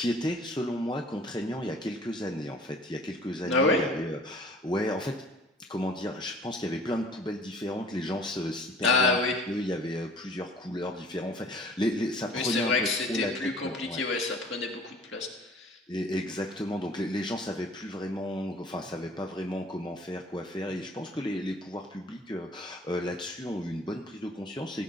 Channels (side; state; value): both; normal; correlation 0.49